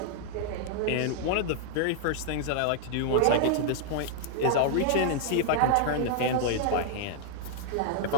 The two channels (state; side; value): different; both; correlation 0.00